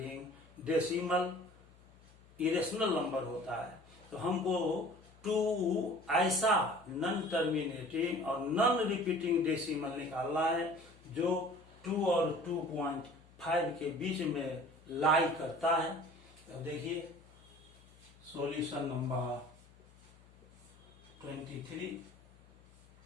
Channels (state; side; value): noise; left; hum, 26 dB below the sound